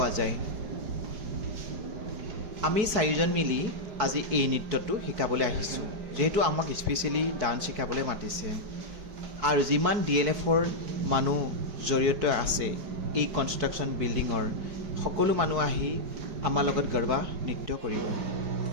যায় আমি চাৰিজন মিলি আজি এই নৃত্যটো শিকাবলৈ আহিছোঁ যেহেতু আমাক স্পেচিয়েলি ডান্স শিকাবলৈ মাতিছে আৰু যিমান DLFৰ মানুহ জড়িত আছে এই কনষ্ট্ৰাকশ্যন বিল্ডিঙৰ সকলো মানুহ আহি আমাৰ লগত গৰবা নৃত্য কৰিব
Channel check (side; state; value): left; late; 4.6 ms